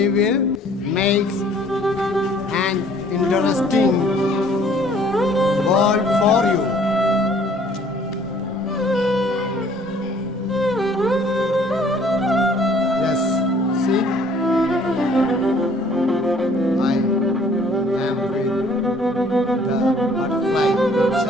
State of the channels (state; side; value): normal; both; correlation 0.58